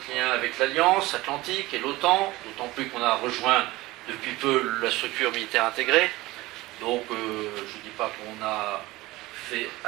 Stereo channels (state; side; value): quieter; left; 19.4 dB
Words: lien avec l'Alliance Atlantique et l'OTAN, d'autant plus qu'on a rejoint depuis peu la structure militaire intégrée. Donc, je ne dis pas qu'on a fait